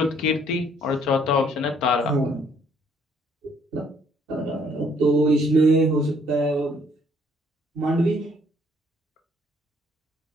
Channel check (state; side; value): normal; both; correlation 0.64